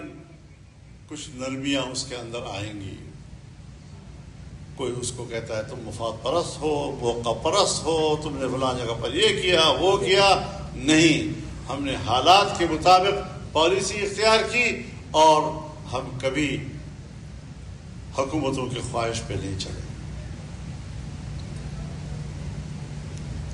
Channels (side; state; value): both; identical; correlation 1.00